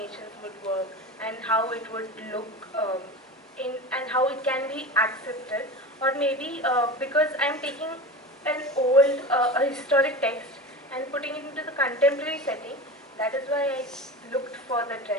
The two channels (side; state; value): both; normal; correlation 0.29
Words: would work and how it would look and how it can be accepted, or maybe because I'm taking an old a historic text and putting it into the contemporary setting. That is why I looked for the